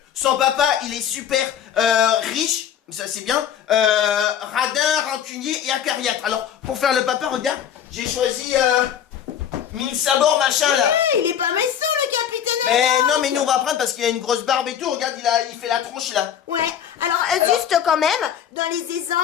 son papa, il est super riche, ça c'est bien, radin, rancunier et acariâtre. Alors, pour faire le papa, regarde, j'ai choisi mille sabords, machin, là. Ouais, il est pas méchant, le capitaine. Mais non, mais nous, on va prendre parce qu'il a une grosse barbe et tout, regarde, il fait la tronche, là. Ouais, alors juste quand même, dans les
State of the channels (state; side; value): quieter; right; 9.1 dB